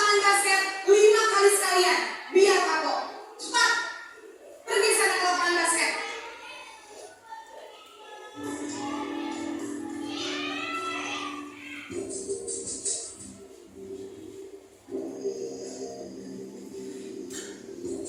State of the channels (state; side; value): identical; both; correlation 1.00